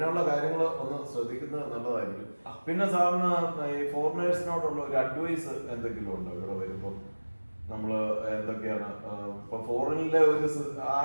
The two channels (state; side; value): inverted; both; correlation -1.00